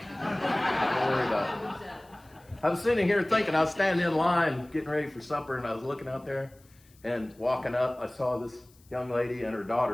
worry about it. I was sitting here thinking, I was standing in line getting ready for supper, and I was looking out there and walking up. I saw this young lady and her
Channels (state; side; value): noise; left; hiss, 30 dB below the sound